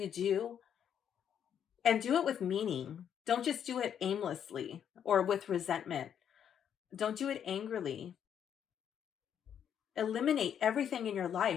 do, and do it with meaning. Don't just do it aimlessly or with resentment. Don't do it angrily. Eliminate everything in your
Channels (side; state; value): right; quieter; 8.8 dB